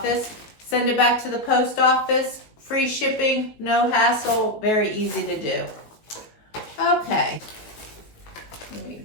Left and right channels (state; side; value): late; right; 18 ms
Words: Send it back to the post office. Free shipping, no hassle, very easy to do. Okay, let me